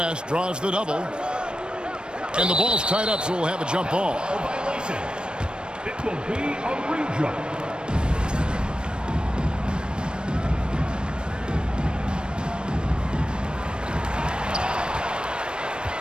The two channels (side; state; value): left; late; 0.054 ms